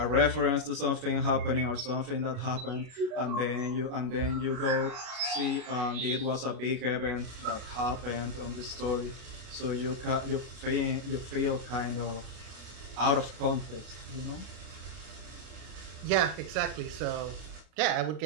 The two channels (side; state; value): left; late; 32 ms